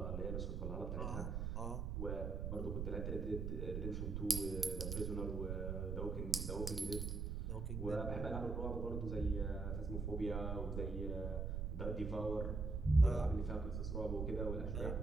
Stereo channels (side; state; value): right; noise; rumble, 2 dB below the sound